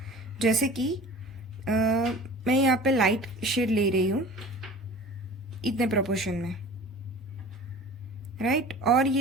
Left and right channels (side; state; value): both; normal; correlation 0.41